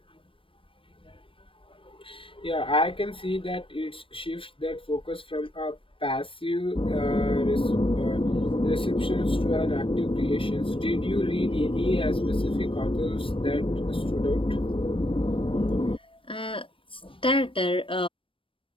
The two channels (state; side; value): late; right; 0.25 ms